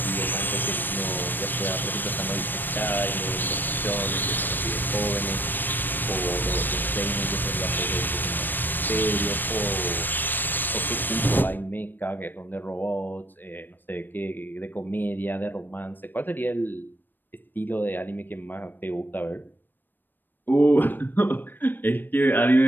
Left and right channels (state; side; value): late; right; 0.092 ms